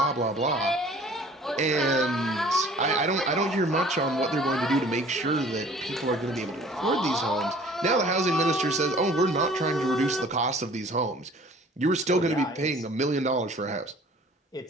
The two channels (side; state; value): both; normal; correlation 0.50